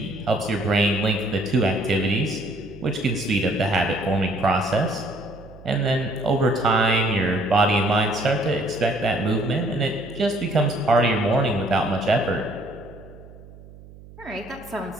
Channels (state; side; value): noise; right; hum, 20 dB below the sound